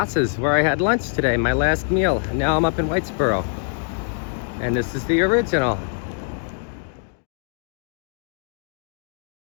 where I had lunch today, my last meal. And now I'm up in Whitesboro. And this is the original.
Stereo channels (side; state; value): right; silent; digital silence